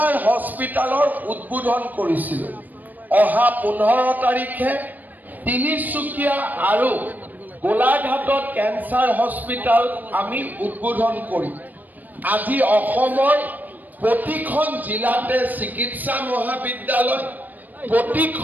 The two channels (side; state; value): left; late; 0.085 ms